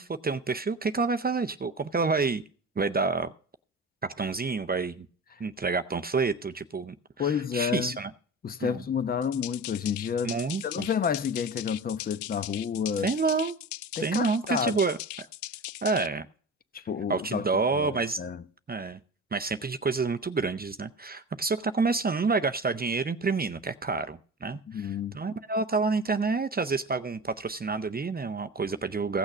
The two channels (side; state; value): both; normal; correlation 0.32